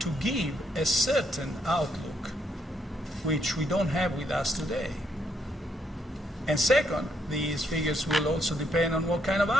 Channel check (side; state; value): both; normal; correlation 0.74